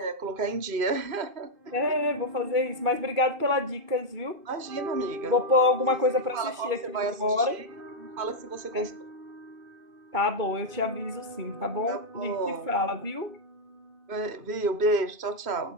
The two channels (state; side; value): late; left; 2.5 ms